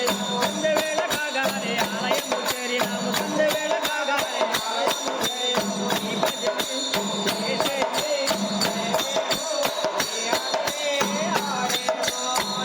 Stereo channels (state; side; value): identical; both; correlation 1.00